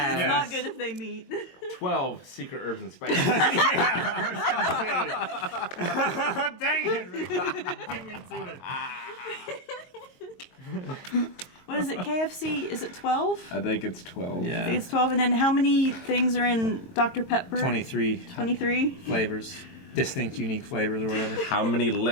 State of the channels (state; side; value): late; right; 22 ms